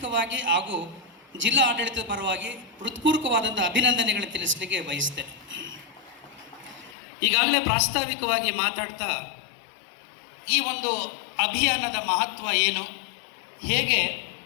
ಹಾಗೂ ಜಿಲ್ಲಾ ಆಡಳಿತದ ಪರವಾಗಿ ಹೃತ್ಪೂರ್ವಕವಾದಂಥ ಅಭಿನಂದನೆಗಳನ್ನು ತಿಳಿಸಲಿಕ್ಕೆ ಬಯಸ್ತೇನೆ. ಈಗಾಗಲೇ ಪ್ರಾಸ್ತಾವಿಕವಾಗಿ ಮಾತಾಡ್ತಾ ಈ ಒಂದು ಅಭಿಯಾನದ ಮಹತ್ವ ಏನು, ಹೇಗೆ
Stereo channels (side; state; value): right; drops out; at 7.0 s